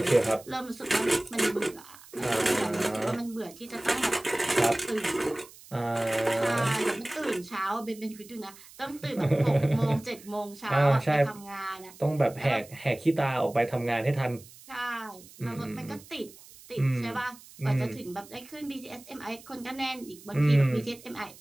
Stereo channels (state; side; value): noise; right; hiss, 21 dB below the sound